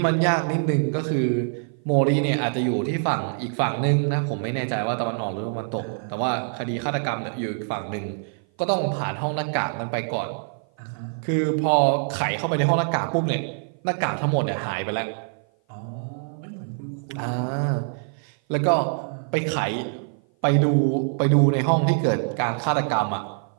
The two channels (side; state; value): left; silent; 55 dB below the other